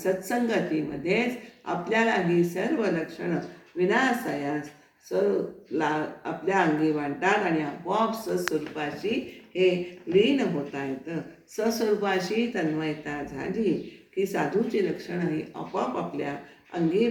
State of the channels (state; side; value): identical; both; correlation 1.00